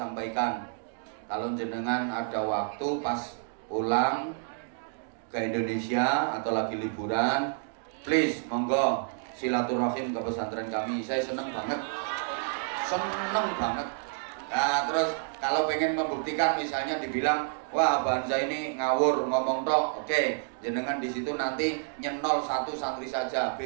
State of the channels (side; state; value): left; silent; 58 dB below the other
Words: kalau jenengan ada waktu pas pulang ke Indonesia atau lagi liburan, please monggo silaturahim ke pesantren kami. Saya seneng banget. Nah terus kalau pengen membuktikan, misalnya dibilang, wah Abah Hamzah ini ngawur ngomong tok, oke, jenengan di situ nanti nyenol 1 santri saja,